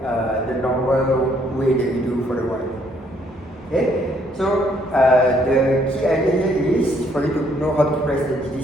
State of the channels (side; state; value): both; normal; correlation 0.67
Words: the normal way that you do for the y. Okay, so the key idea here is for you to know how to press the